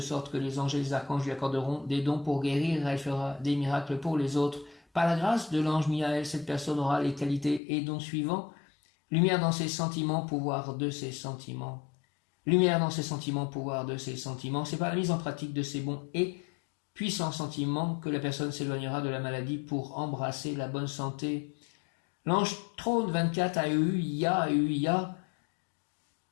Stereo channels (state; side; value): drops out; right; at 7.6 s